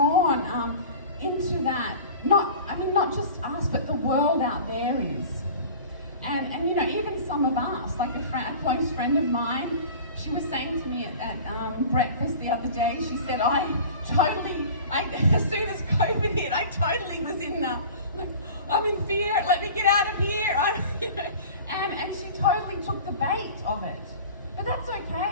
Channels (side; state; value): both; inverted; correlation -0.40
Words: into that, not just us, but the world out there is. And you know, even some of us, like a close friend of mine, she was saying to me at breakfast the other day, she said, as soon as COVID hit, I totally was I'm in fear, let me get out of here. And she totally took the bait of it. But that's